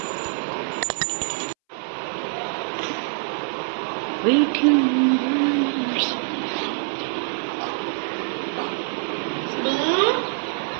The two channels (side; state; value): left; silent; 62 dB below the other